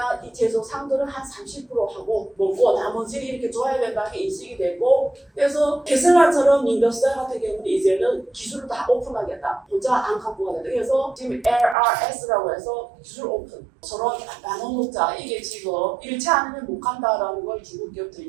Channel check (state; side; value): drops out; left; at 11.8 s